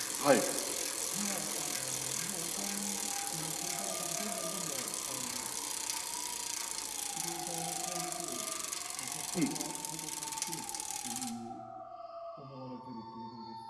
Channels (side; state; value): both; identical; correlation 1.00